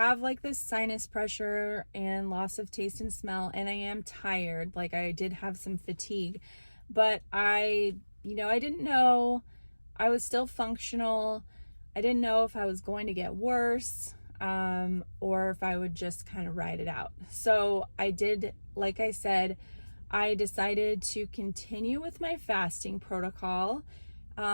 this sinus pressure and loss of taste and smell, and I am tired. I did have some fatigue, but I didn't know. I was still functional. I didn't know if I was going to get worse, or if I would just kind of ride it out. So I did, like I said, I decided to continue with my fasting protocol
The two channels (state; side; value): inverted; both; correlation -1.00